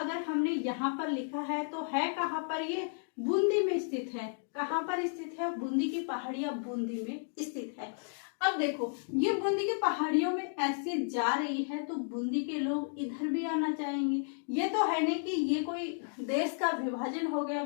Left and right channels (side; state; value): right; silent; digital silence